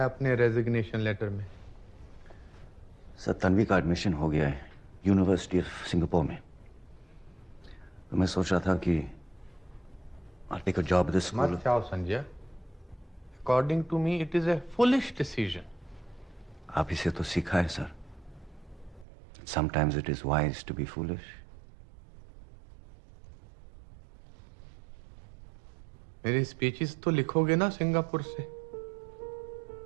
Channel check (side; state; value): left; drops out; at 19.1 s